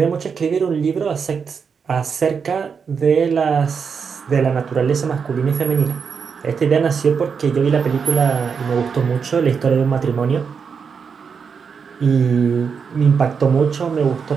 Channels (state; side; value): quieter; left; 6.1 dB